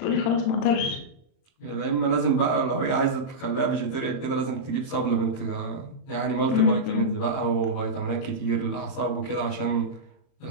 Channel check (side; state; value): right; late; 30 ms